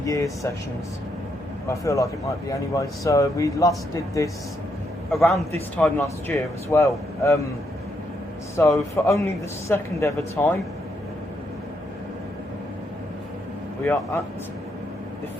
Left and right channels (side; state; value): both; normal; correlation 0.77